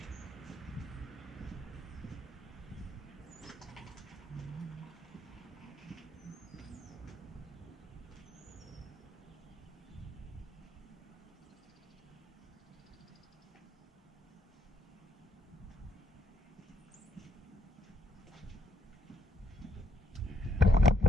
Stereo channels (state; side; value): normal; both; correlation 0.73